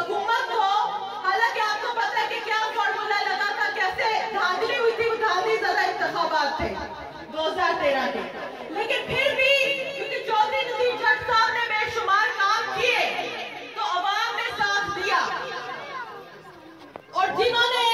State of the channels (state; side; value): identical; both; correlation 1.00